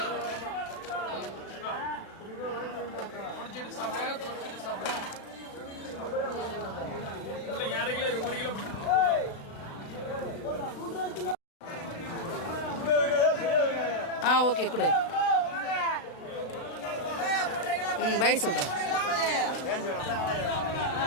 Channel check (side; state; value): right; late; 36 ms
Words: ஓகே கொடு. பாய் சொல்கிறேன்.